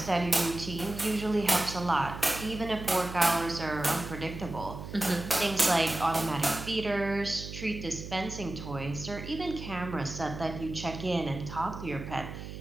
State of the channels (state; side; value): noise; right; hum, 10 dB below the sound